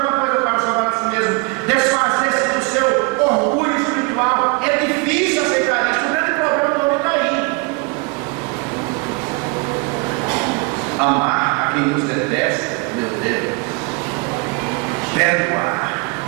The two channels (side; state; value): left; quieter; 29.4 dB